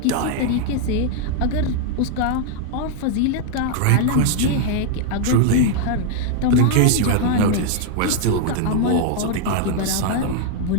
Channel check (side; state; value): both; different; correlation 0.00